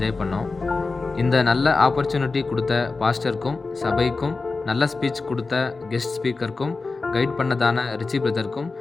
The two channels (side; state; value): right; quieter; 3.9 dB